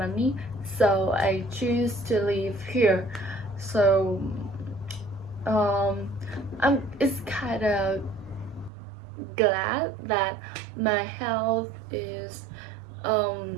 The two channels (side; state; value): left; drops out; at 8.7 s